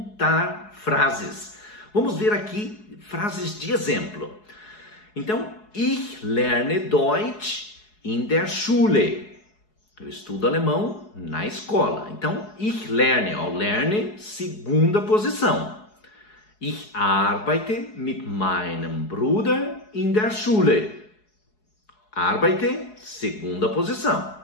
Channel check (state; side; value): late; right; 4.7 ms